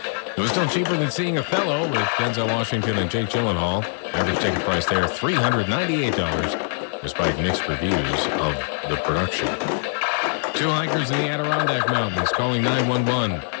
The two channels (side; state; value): right; silent; digital silence